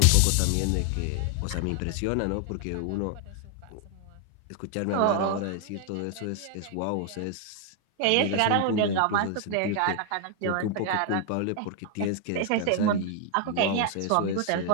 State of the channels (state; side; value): different; both; correlation 0.00